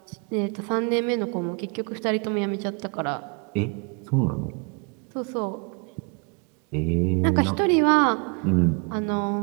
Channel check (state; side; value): quieter; left; 35.3 dB